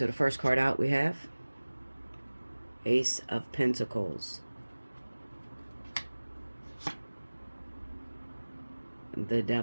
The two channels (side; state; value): both; inverted; correlation -1.00